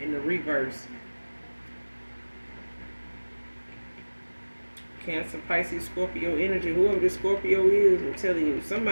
the reverse. Cancer, Pisces, Scorpio energy. Whoever this Scorpio is, I'm telling you,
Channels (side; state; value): both; inverted; correlation -1.00